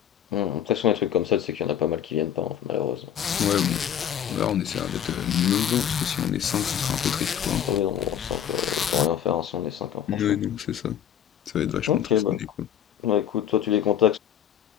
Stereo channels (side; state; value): right; quieter; 9.5 dB